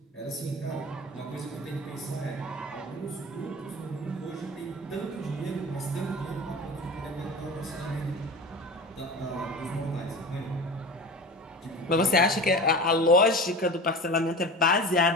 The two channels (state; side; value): normal; both; correlation 0.33